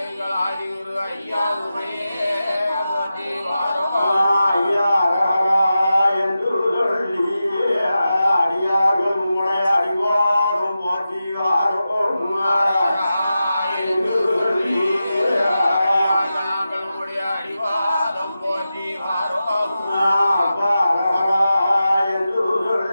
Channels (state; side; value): inverted; both; correlation -0.91